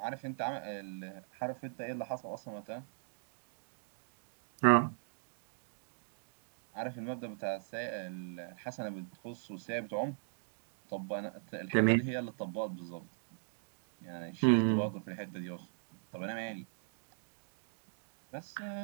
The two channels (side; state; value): left; silent; digital silence